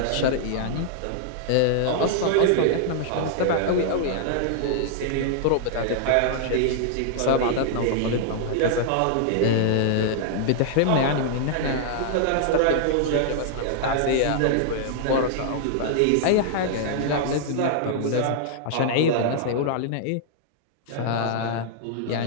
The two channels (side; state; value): both; different; correlation -0.01